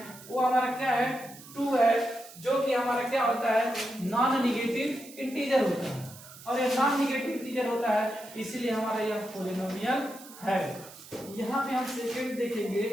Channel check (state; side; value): noise; right; hiss, 18 dB below the sound